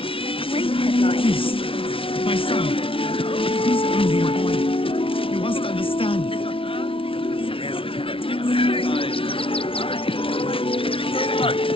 Great headlines. My son, he's only a boy. You must understand.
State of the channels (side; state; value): right; late; 0.26 ms